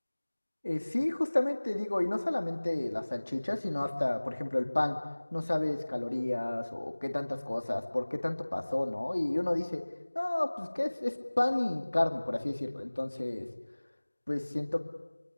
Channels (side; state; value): both; inverted; correlation -1.00